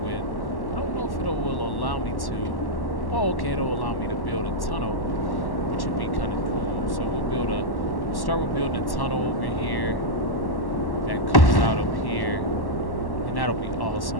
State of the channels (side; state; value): right; late; 1.1 ms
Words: I don't know if it will allow me to. Oh, okay, it'll allow me to build a tunnel, which would be kind of cool. So we'll start with building a tunnel over here that comes out up here, and that'll be